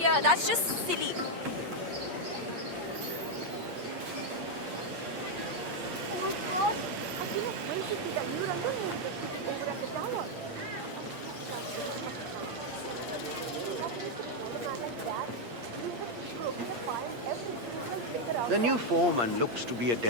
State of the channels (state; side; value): late; left; 8.6 ms